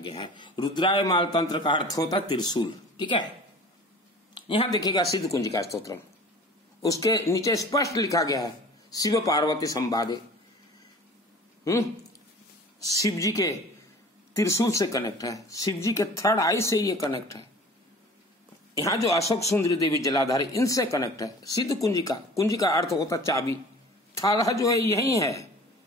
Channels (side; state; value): both; normal; correlation 0.43